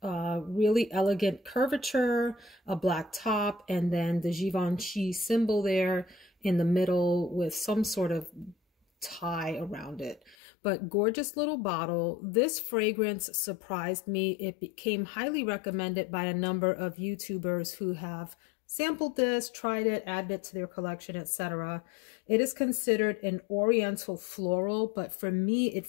really elegant curvature, a black top, and then the Givenchy symbol there in the middle with some sort of tie around it. But gorgeous little bottle. This fragrance surprised me. It became highly recommended by a number of YouTubers who have sampled this, tried it, added it to their collection, etc. It is considered an oriental floral, but for me it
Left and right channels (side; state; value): right; drops out; at 10.4 s